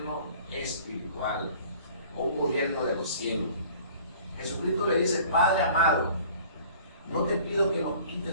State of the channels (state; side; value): inverted; both; correlation -0.49